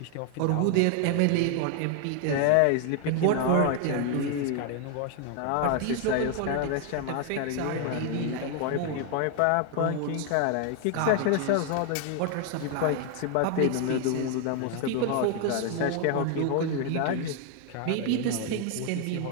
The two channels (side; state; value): both; different; correlation 0.01